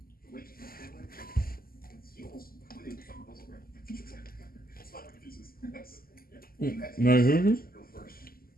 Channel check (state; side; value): late; right; 0.42 ms